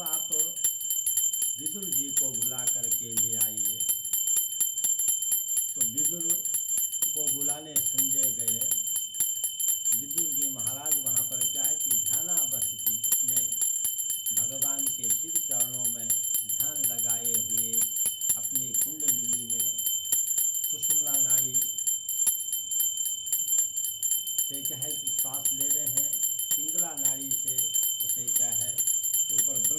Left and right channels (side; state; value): both; identical; correlation 1.00